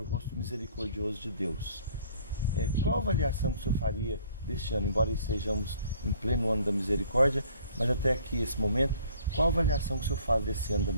o rosto misericordioso de Deus. Qual a avaliação que o senhor faria deste ano, embora estejamos em pleno ano da misericórdia, mas até aqui, esse momento, qual a avaliação que o senhor faz desse ano da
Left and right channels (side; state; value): both; inverted; correlation -0.56